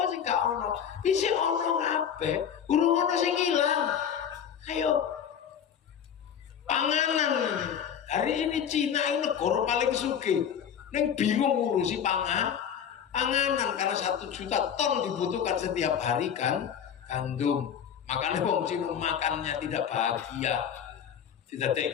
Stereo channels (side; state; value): right; quieter; 8.3 dB